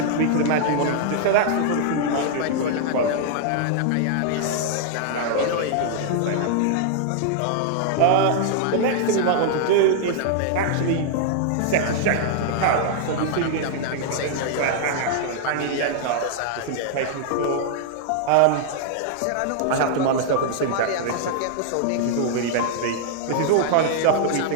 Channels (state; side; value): different; both; correlation -0.01